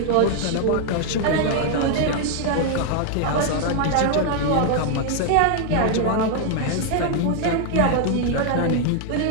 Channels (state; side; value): different; both; correlation 0.00